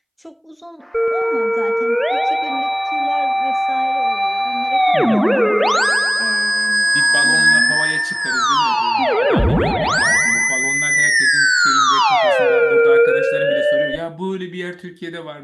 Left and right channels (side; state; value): both; identical; correlation 1.00